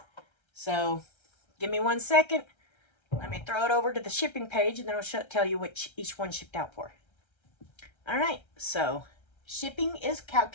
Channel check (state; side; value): late; right; 1.3 ms